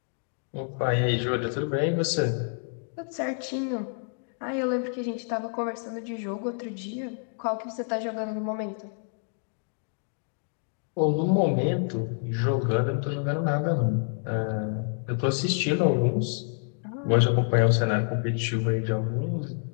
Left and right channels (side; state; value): right; silent; 59 dB below the other